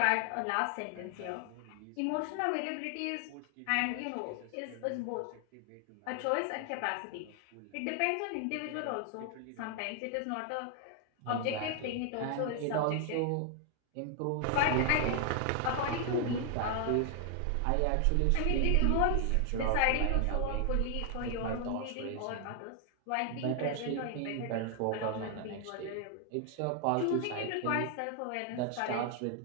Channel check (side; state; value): both; different; correlation 0.00